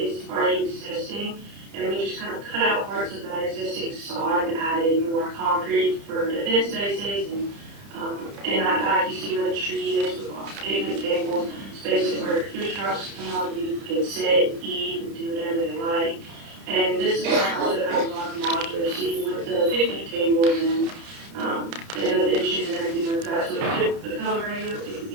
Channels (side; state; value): left; late; 30 ms